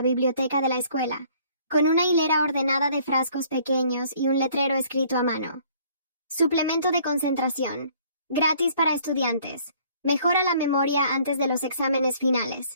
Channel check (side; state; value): both; inverted; correlation -0.59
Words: biblioteca de la escuela, con una hilera ordenada de frascos pequeños y un letrero escrito a mano. Suplemento de concentración. Gratis para estudiantes. Mejora la memoria antes de los exámenes